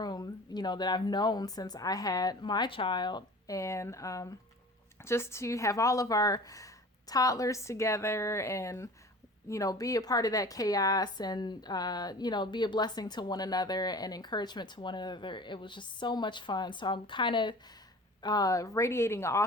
that I've known since I had my child, and just to have all of our toddlers together and be a part of that chaos, and be a blessing to one another and encouragement to one another. It was just so much fun. So I'm kind of radiating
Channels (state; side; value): normal; both; correlation 0.41